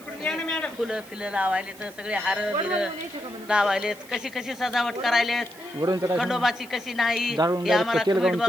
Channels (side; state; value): right; noise; hiss, 22 dB below the sound